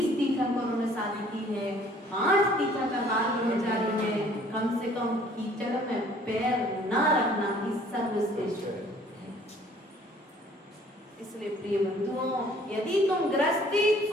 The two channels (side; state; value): both; normal; correlation 0.56